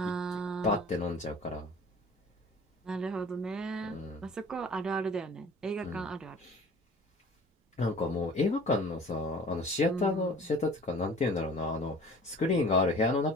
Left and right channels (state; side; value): normal; both; correlation 0.46